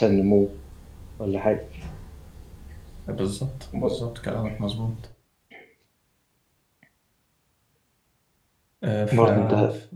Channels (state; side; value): identical; both; correlation 1.00